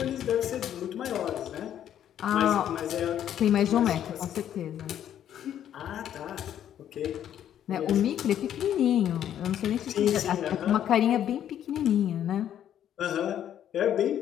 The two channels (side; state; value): right; quieter; 10.4 dB